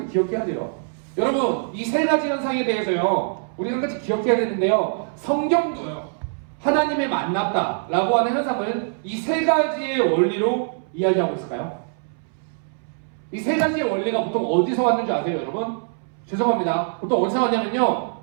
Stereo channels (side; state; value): left; silent; 63 dB below the other